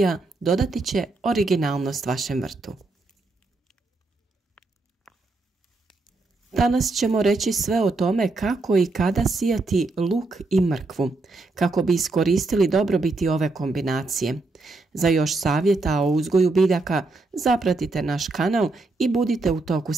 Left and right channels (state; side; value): quieter; left; 3.4 dB